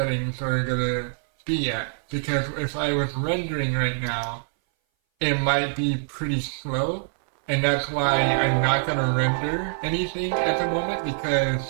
are gonna be at. Because if I was rendering right now, it might be pretty slow, and that's why I'm not gonna render anything at the moment,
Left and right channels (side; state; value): left; silent; 59 dB below the other